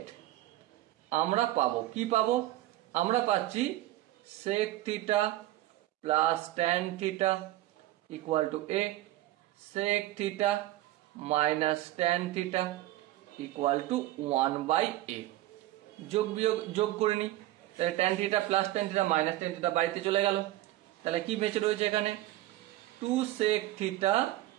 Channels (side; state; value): left; quieter; 15.5 dB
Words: আমরা পাবো কি পাবো? আমরা পাচ্ছি sec theta plus tan theta equal to A, sec theta minus tan theta equal to 1/a। যোগ করে নি, তাহলে tan theta plus tan theta minus tan theta বাড়িতে চলে গেল। তাহলে কি বেঁচে রয়েছে এখানে? 2 sec theta